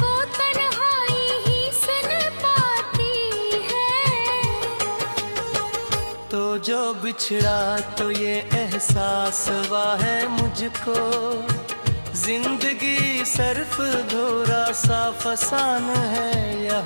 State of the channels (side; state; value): both; inverted; correlation -1.00